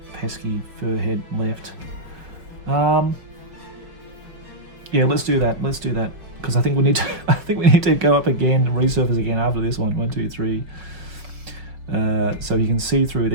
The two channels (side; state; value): left; late; 5.2 ms